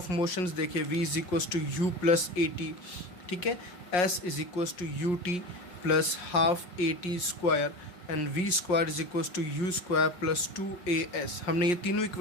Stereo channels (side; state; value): right; late; 5.6 ms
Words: मोशंस देखे, v is equals to u plus a t, ठीक है, s is equals to u t plus half a t square and v square is equals to u square plus 2as। हमने ये तीनों